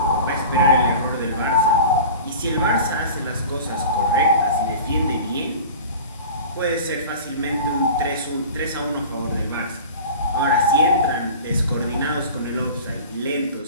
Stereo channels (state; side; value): inverted; both; correlation -0.37